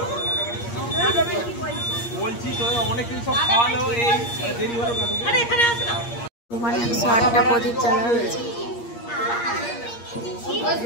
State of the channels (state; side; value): late; right; 8.5 ms